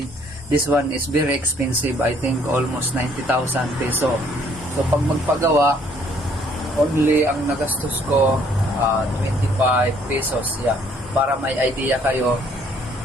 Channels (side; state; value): both; normal; correlation 0.63